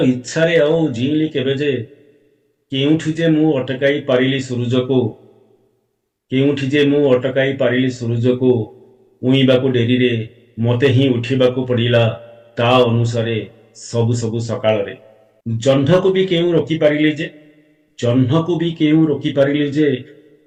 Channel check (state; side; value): identical; both; correlation 1.00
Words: ଇଚ୍ଛାରେ ଆଉ ଜିଇଁଲି କେବେ ଯେ କେଉଁଠି ଯେ ମୁଁ ଅଟକାଇ ପାରିଲି ସୂରୁଜକୁ କେଉଁଠି ଯେ ମୁଁ ଅଟକାଇ ପାରିଲି ସୂରୁଜକୁ ଉଇଁବାକୁ ଡେରିରେ ମୋତେ ହିଁ ଉଠିବାକୁ ପଡ଼ିଲା ତା ଅନୁସାରେ ସବୁ ସବୁ ସକାଳରେ ଜହ୍ନକୁ ବି କେଉଁ ରୋକିପାରିଲି ଯେ ଜହ୍ନକୁ ବି କେଉଁ ରୋକିପାରିଲି ଯେ